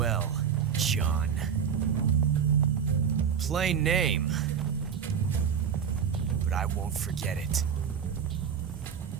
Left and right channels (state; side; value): quieter; left; 7.4 dB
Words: John. Plain name. But I won't forget it.